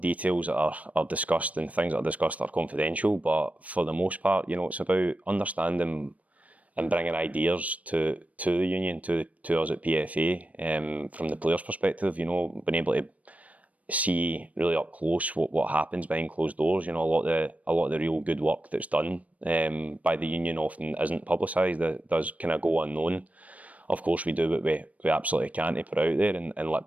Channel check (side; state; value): left; late; 0.069 ms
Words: that are discussed, and things that are discussed are confidential, but for the most part, it's about understanding and bringing ideas to the union, to us at PFA, from the players' perspective, being able to see really up close what happens behind closed doors. A lot of the real good work that's done by the union often isn't publicised. It does kind of go unknown. Of course, we do what we absolutely can to put out there and let